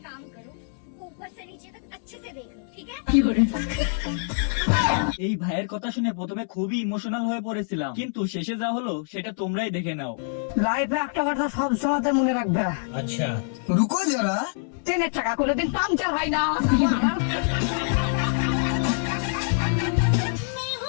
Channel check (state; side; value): silent; right; 61 dB below the other